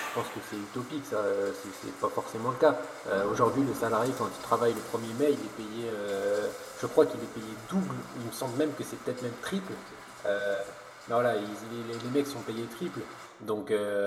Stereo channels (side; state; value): both; identical; correlation 1.00